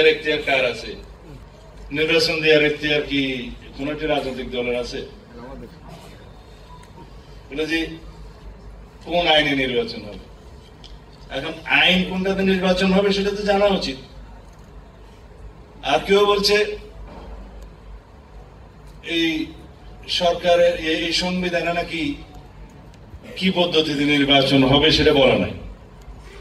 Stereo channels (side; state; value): both; identical; correlation 1.00